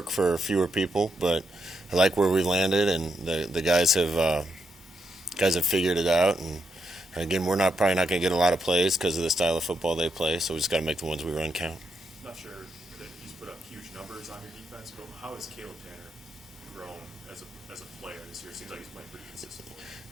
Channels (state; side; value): normal; both; correlation 0.81